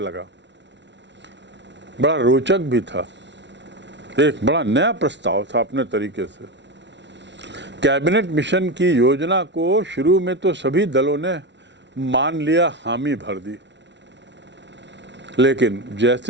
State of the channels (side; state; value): left; late; 0.51 ms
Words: बड़ा रोचक भी था, एक बड़ा नया प्रस्ताव था अपने तरीके से। कैबिनेट मिशन की योजना को शुरू में तो सभी दलों ने मान लिया, हामी भर दी, लेकिन